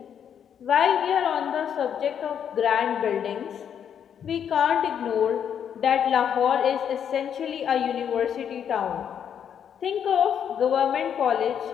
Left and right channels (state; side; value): quieter; right; 8.5 dB